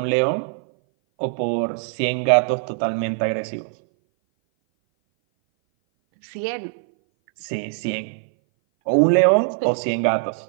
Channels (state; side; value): silent; left; 59 dB below the other